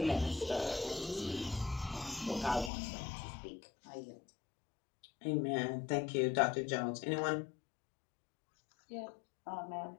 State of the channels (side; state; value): right; drops out; at 2.7 s